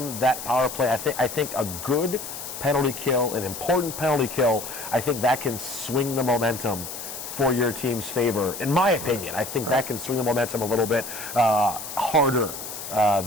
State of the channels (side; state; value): left; noise; hiss, 9 dB below the sound